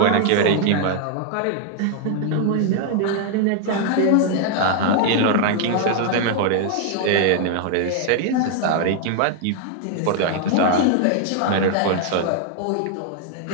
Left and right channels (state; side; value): different; both; correlation 0.00